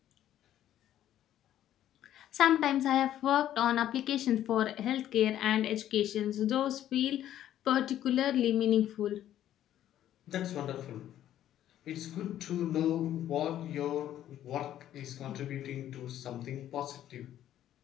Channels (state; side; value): quieter; right; 11.8 dB